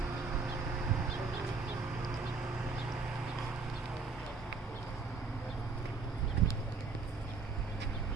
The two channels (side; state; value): left; quieter; 4.5 dB